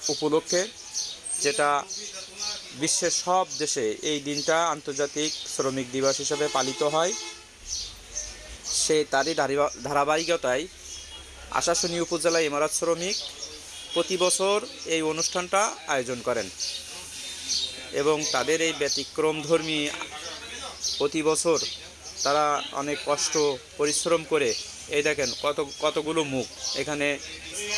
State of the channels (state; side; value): identical; both; correlation 1.00